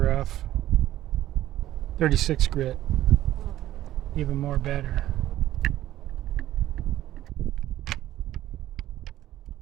36 grit, even more better.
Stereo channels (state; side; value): quieter; left; 13.7 dB